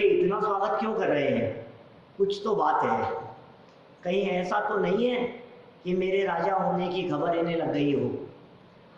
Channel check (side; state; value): both; identical; correlation 1.00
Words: इतना स्वागत क्यों कर रहे हैं, कुछ तो बात है, कहीं ऐसा तो नहीं है कि मेरे राजा होने की खबर इन्हें लग गई